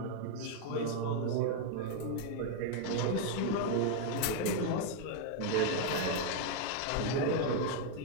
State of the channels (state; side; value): different; both; correlation 0.00